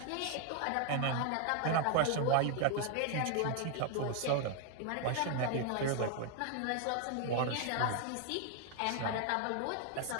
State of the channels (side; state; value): both; different; correlation 0.01